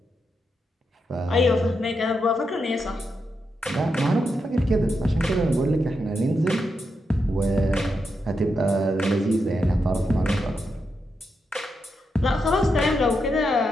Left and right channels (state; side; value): normal; both; correlation 0.84